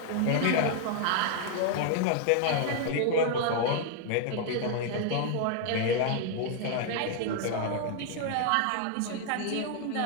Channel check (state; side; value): different; both; correlation 0.00